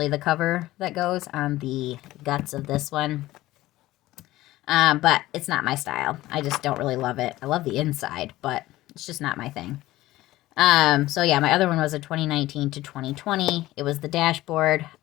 the cover that goes on the guts of this one. But it's not my style. I just don't really love it. I love the inside, but it's just not my thing. So yeah, my other one was a 2019 to 2020. It was the dashboard.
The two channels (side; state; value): right; quieter; 16.7 dB